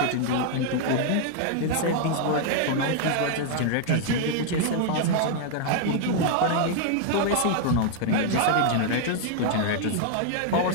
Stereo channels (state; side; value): different; both; correlation 0.00